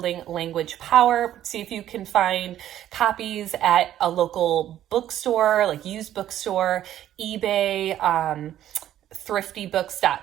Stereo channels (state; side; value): quieter; left; 12.0 dB